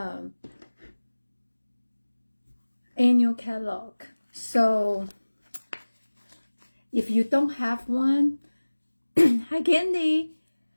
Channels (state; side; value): inverted; both; correlation -1.00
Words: annual catalog. So if you don't have one, hi Candy.